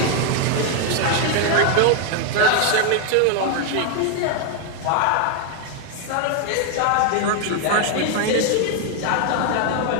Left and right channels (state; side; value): different; both; correlation 0.01